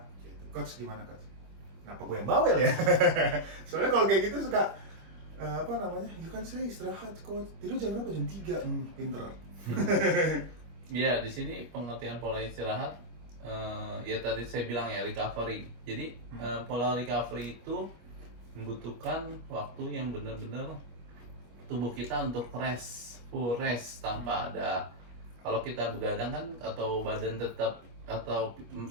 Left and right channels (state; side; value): late; left; 25 ms